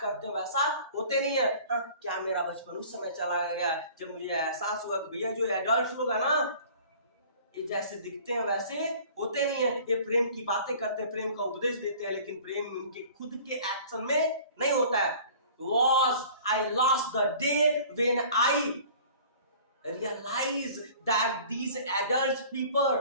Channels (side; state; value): both; inverted; correlation -0.47